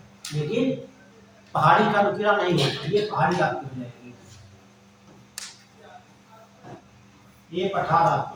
लेकिन पहाड़ी का नुकीला नहीं है, ये पहाड़ी आपकी हो जाएगी, ये पठार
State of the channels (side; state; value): both; identical; correlation 1.00